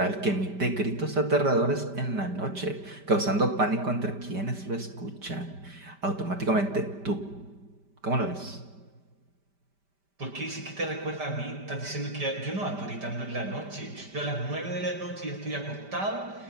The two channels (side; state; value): left; late; 5.1 ms